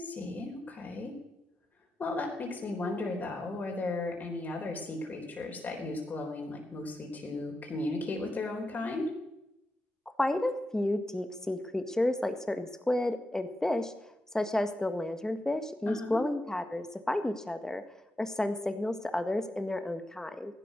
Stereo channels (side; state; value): both; normal; correlation 0.88